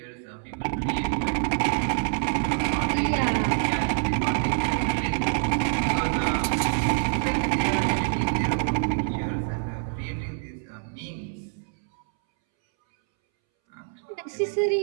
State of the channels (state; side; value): silent; left; 61 dB below the other